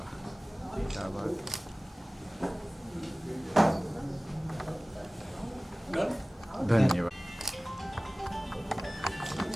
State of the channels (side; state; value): both; normal; correlation 0.98